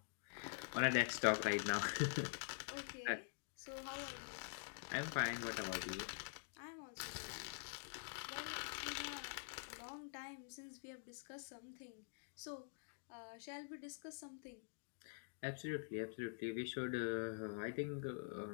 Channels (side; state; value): right; silent; digital silence